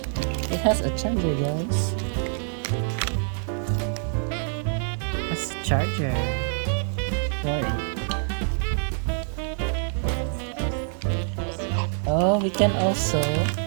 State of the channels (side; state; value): left; silent; 61 dB below the other